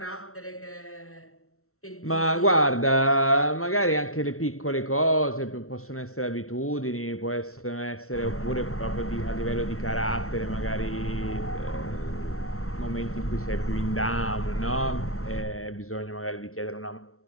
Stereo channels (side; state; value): right; late; 0.63 ms